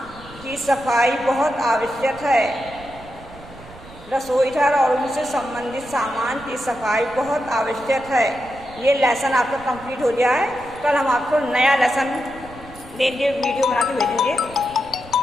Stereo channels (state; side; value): noise; right; rumble, 19 dB below the sound